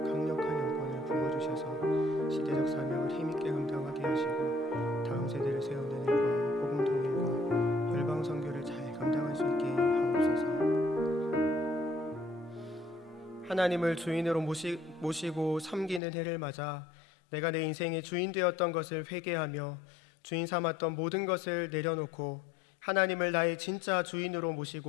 강력한 영권을 부어주셔서 시대적 사명을 힘있게 감당하게 하시고 다음 세대를 세우는 일과 복음 통일과 열방 선교를 잘 감당할 수 있게 하옵소서. 하나님을 주인으로 모시고 섬기는 해를 맞아 내가 내 인생의 주인 되었던 것을 회개하며 주인 삼았던 모든 것을 내려놓고 하나님을 나의 진짜 주인으로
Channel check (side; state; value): right; drops out; at 16.0 s